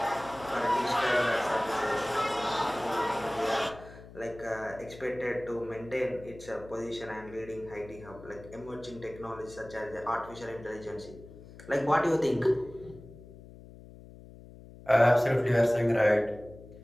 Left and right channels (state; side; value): noise; left; hum, 18 dB below the sound